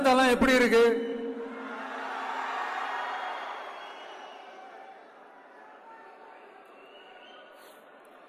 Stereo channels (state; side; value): identical; both; correlation 1.00